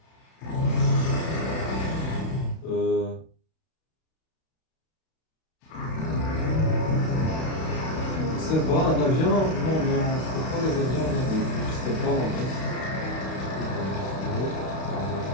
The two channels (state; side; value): late; right; 32 ms